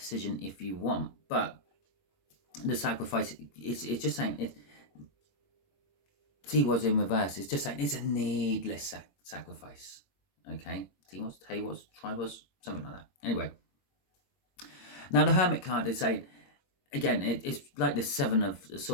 if you want, but the sacrifice, it's just saying it. T-Was in reverse. It's just saying it's a needless sacrifice. Okay, T-Was, T-Was, Tri-Was, something like that. Anyway, now the Hermit card is saying, again, it's like the Seven of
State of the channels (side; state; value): right; late; 22 ms